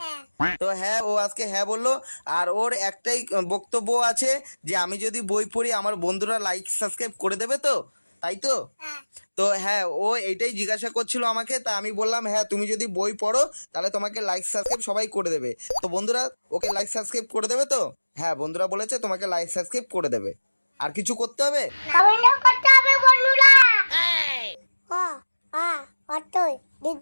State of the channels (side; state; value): both; inverted; correlation -1.00